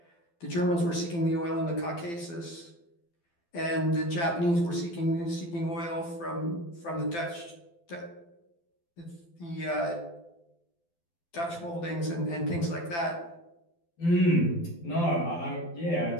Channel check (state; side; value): late; right; 12 ms